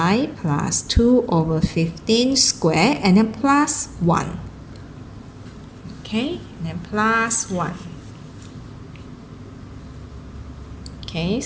plus 2 over 15 squared, and then plus 1. Okay, and then plus 1. Okay,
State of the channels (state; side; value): identical; both; correlation 1.00